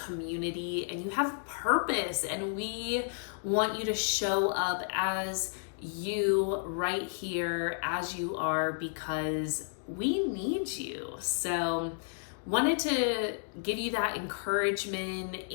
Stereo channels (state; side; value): silent; right; digital silence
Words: and you have purpose. And we want you to show up as you right here as you are, because we need you. So wanted to give you that encouragement